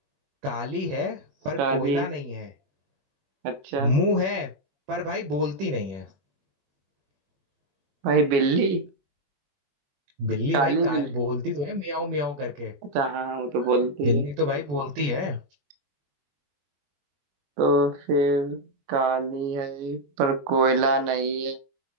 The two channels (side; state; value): left; late; 22 ms